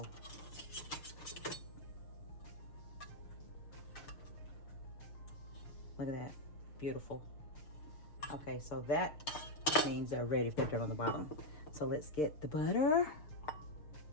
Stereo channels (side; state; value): right; late; 6.6 ms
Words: Look at that, beautiful. Okay, so that means they're ready if they're done on the bottom. So let's get the butter.